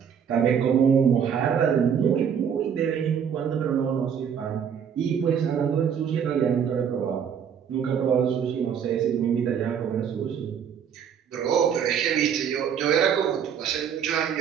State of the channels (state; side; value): quieter; left; 7.8 dB